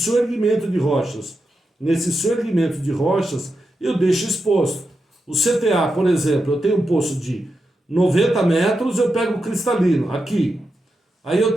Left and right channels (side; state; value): both; normal; correlation 0.88